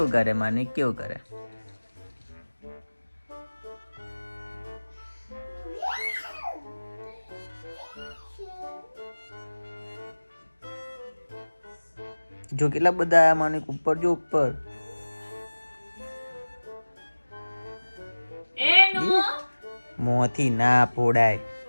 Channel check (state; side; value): inverted; both; correlation -1.00